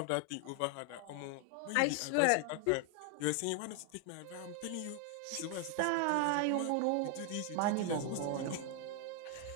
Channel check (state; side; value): different; both; correlation 0.00